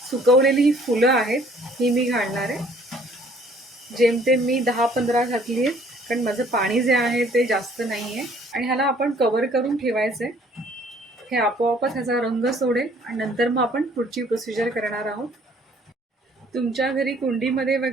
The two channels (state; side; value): normal; both; correlation 0.59